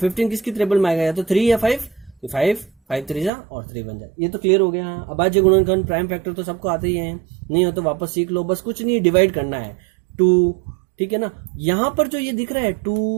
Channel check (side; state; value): left; drops out; at 3.3 s